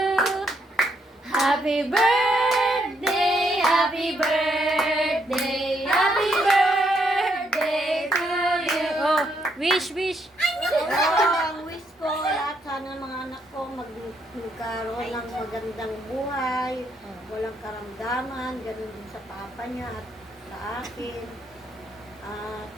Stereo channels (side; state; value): both; normal; correlation 0.75